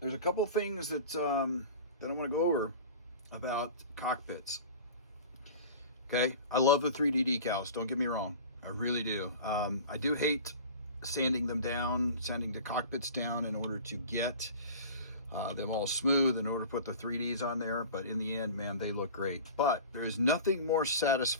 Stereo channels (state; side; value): inverted; both; correlation -0.38